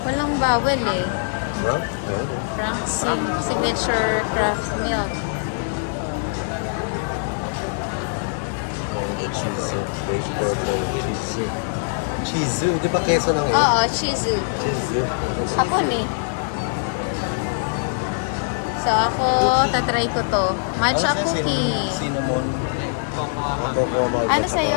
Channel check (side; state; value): right; silent; 64 dB below the other